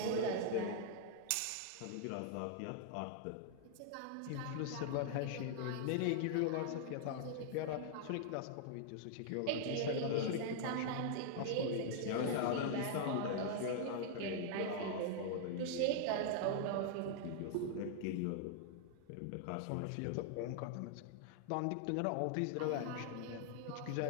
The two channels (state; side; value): different; both; correlation -0.01